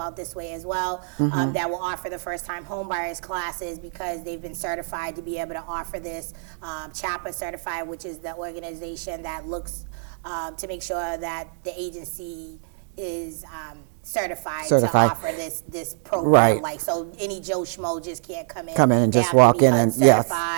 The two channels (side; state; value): left; silent; digital silence